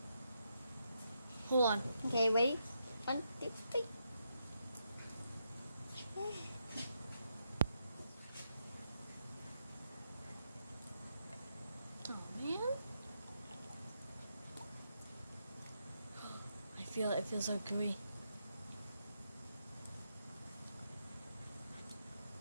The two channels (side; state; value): both; inverted; correlation -0.81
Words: Hold on. Okay, ready? 1, 2, 3. Oh man. I feel it. It feels so gooey.